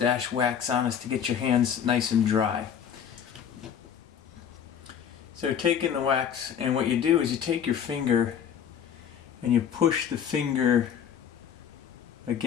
wax on is to get your hands nice and dry. So taking the wax, and what you do is you take your finger and you push the finger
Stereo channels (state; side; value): quieter; right; 8.3 dB